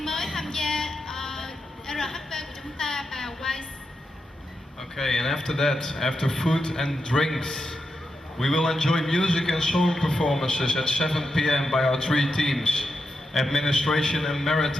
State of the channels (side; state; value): both; normal; correlation 0.87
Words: mới tham gia RHV của chúng ta và Wise. Okay, and after that, after food and drinks, we will enjoy music and song performances at 7 p.m. by our three teams: Administration and